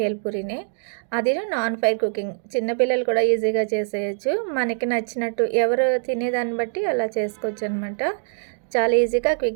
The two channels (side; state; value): left; silent; digital silence